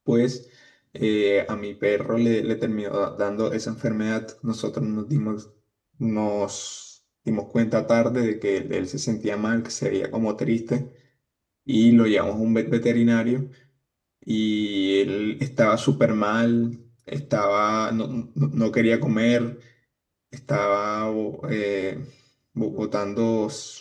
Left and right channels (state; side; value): identical; both; correlation 1.00